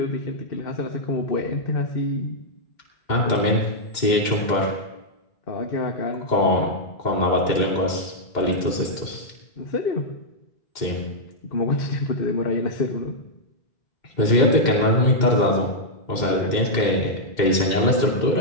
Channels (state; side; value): late; right; 2.1 ms